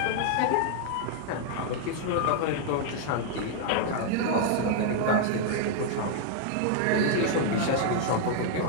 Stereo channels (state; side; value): different; both; correlation 0.00